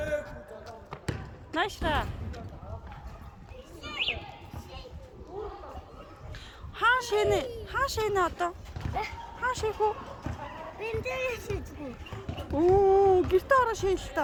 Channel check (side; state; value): both; identical; correlation 1.00